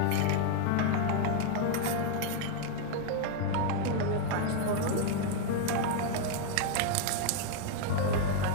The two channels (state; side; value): different; both; correlation 0.00